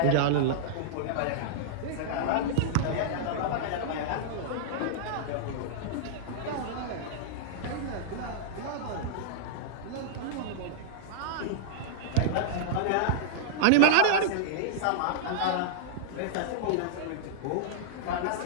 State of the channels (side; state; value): both; different; correlation -0.02